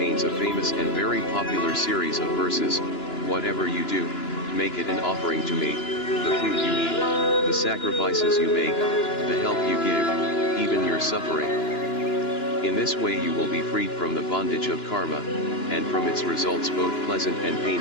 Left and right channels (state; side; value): late; right; 2.9 ms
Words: a famous and very popular series of verses. Whatever you do, make it an offering to me, the food you eat, the sacrifices you make, the help you give, even your suffering. In this way you will be freed from the bondage of karma, and from its results both pleasant and